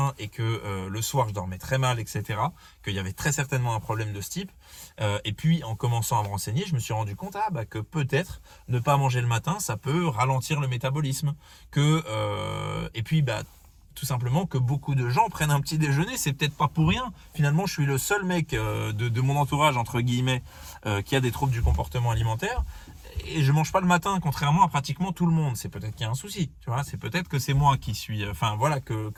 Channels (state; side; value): identical; both; correlation 1.00